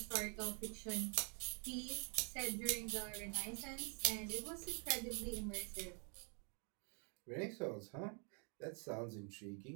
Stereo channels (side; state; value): left; quieter; 38.8 dB